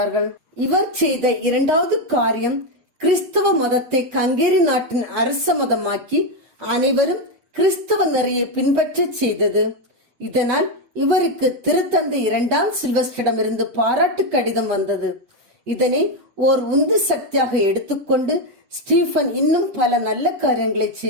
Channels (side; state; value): left; late; 8.2 ms